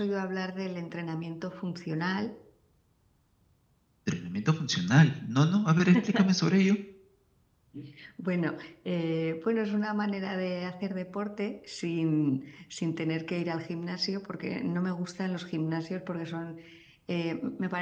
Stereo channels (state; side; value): identical; both; correlation 1.00